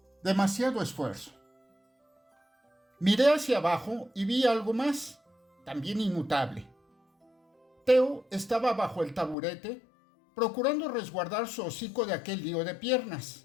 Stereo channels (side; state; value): right; drops out; at 9.3 s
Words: Demasiado esfuerzo. Miré hacia abajo y vi algo más, también inmutable. Theo estaba bajo el taburete, procurando resguardar su hocico de aquel lío de